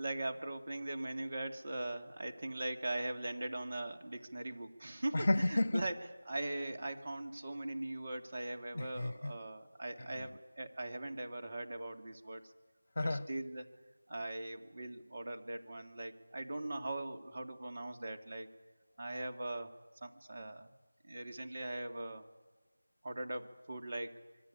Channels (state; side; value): inverted; both; correlation -0.96